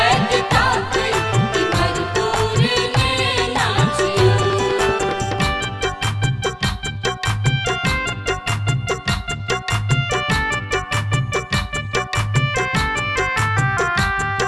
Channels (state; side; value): identical; both; correlation 1.00